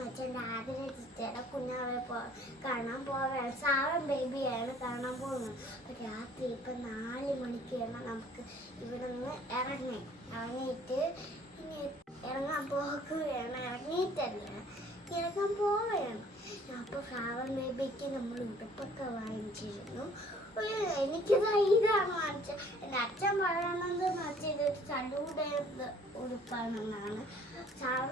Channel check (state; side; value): normal; both; correlation 0.56